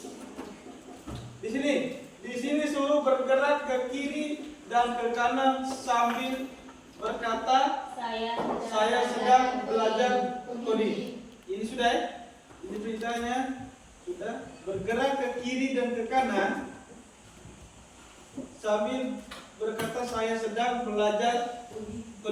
Di sini suruh bergerak ke kiri dan ke kanan sambil berkata, saya sedang belajar coding. Ini sudah ya? Ini perintahnya sudah bergerak ke kiri dan ke kanan sambil berkata saya sedang belajar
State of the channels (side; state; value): both; identical; correlation 1.00